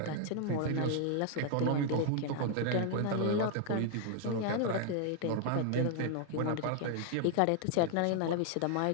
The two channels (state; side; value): different; both; correlation 0.00